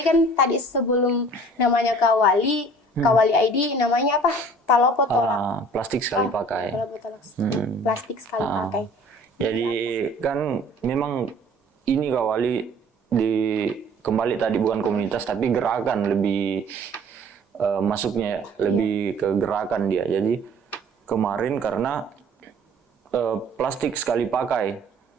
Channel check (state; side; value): normal; both; correlation 0.51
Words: kan tadi sebelum namanya Kawali ID namanya apa? Palopo tolak. Plastik sekali pakai. Plastik sekali pakai. Jadi kan memang ini Kawali kembali tadi bukan komunitas tapi gerakan, lebih masuknya lebih ke gerakan dia. Jadi kemarin karena plastik sekali pakai